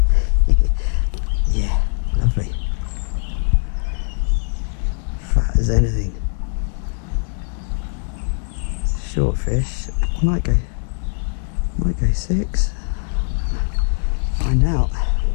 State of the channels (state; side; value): silent; right; digital silence